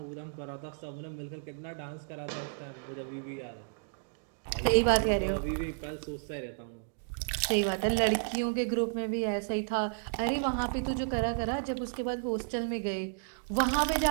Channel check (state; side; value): silent; left; digital silence